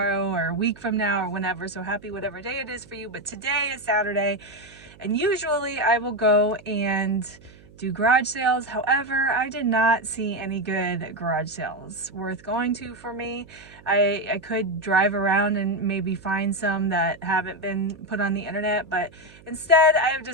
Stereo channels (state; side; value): noise; right; hum, 23 dB below the sound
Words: or a week from now or whenever. So happy whatever day it is for you. But today is Saturday, and usually I will go and do garage sales. However, I did not see any good garage sales worth going to for me. I could drive around and maybe find some that haven't been put on the internet, but instead I have